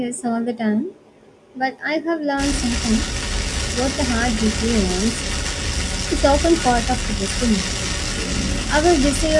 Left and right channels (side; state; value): both; identical; correlation 1.00